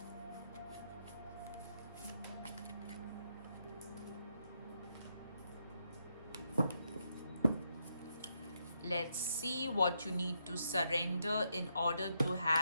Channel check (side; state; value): both; inverted; correlation -0.80